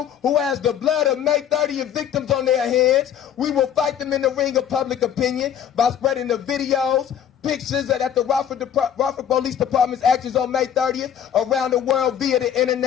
who has the blood of May 30th victims on their hands. We will fight them in the ring of public opinion by spreading the videos, pictures that the Rockford Police Department's actions on May 30th around the world via the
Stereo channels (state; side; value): quieter; right; 9.3 dB